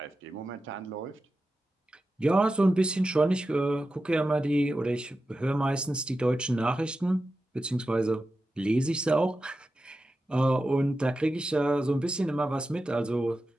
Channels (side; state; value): both; normal; correlation 0.92